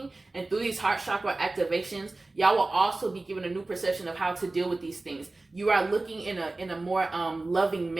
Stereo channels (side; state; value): left; quieter; 3.1 dB